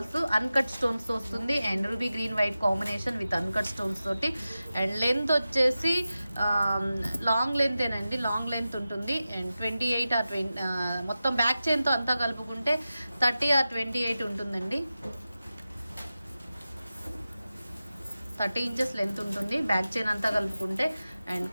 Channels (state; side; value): inverted; both; correlation -0.94